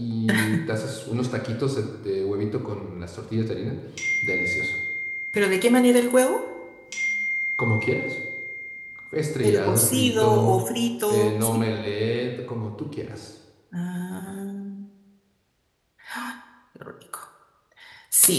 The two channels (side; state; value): both; identical; correlation 1.00